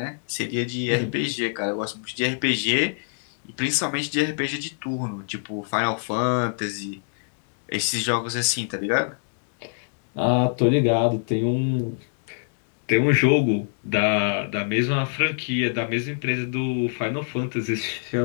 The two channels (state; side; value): silent; right; digital silence